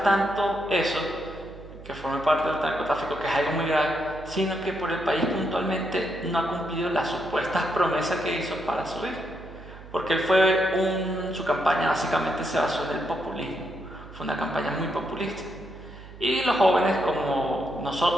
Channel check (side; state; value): right; noise; hum, 17 dB below the sound